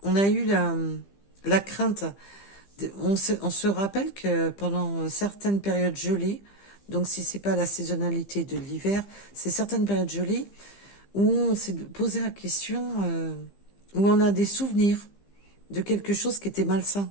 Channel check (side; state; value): right; late; 15 ms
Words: on a eu la crainte. On se rappelle que pendant certaines périodes gelées, donc si c'est pas la saisonnalité de l'hiver, c'est certaines périodes gelées où on s'est posé la question, où on a des souvenirs de quelque chose qui était malsain.